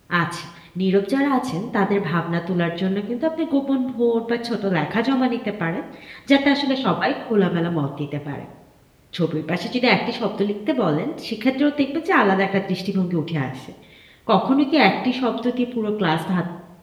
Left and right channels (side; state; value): both; identical; correlation 1.00